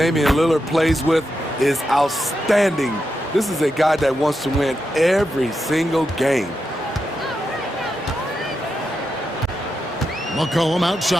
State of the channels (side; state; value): both; normal; correlation 0.86